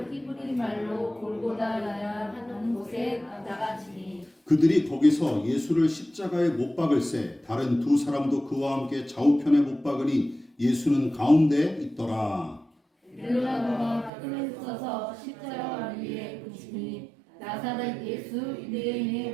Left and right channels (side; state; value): left; drops out; at 14.1 s